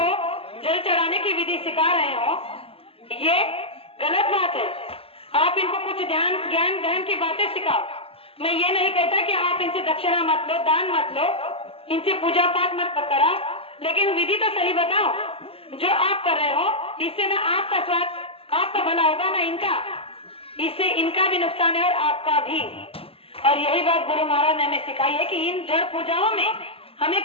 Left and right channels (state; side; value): late; right; 0.27 ms